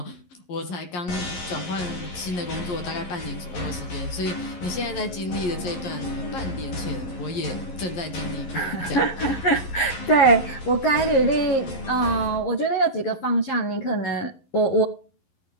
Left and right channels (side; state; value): right; late; 11 ms